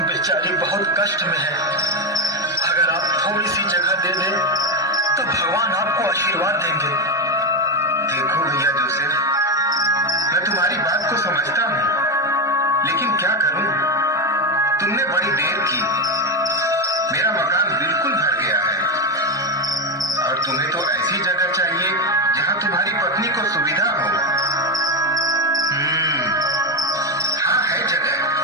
बेचारी बहुत कष्ट में है। अगर आप थोड़ी सी जगह दे दें तो भगवान आपको आशीर्वाद देंगे। देखो भैया जोसेफ, मैं तुम्हारी बात को समझता हूँ, लेकिन क्या करूँ? तुमने बड़ी देर की। मेरा मकान बिल्कुल भर गया है और तुम्हें तो ऐसी जगह चाहिए जहाँ तुम्हारी पत्नी को सुविधा हो। हाँ, है जगह,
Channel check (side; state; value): both; normal; correlation 0.11